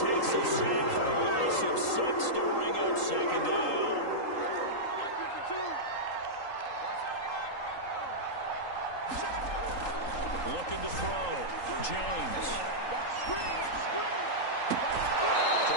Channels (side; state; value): right; late; 3.8 ms